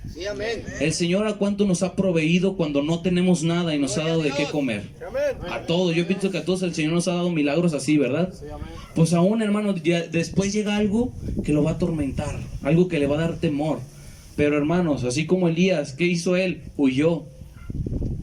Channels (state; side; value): identical; both; correlation 1.00